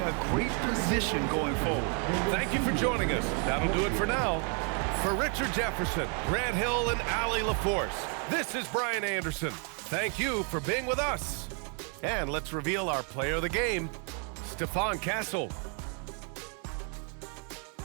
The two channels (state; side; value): quieter; left; 39.5 dB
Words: a great position going forward. Thank you for joining us. That'll do it for now. For Richard Jefferson, Grant Hill, and Allie LaForce, this is Brian Anderson. Thank you for being with us. And let's reveal our player of the game, Stephon Castle.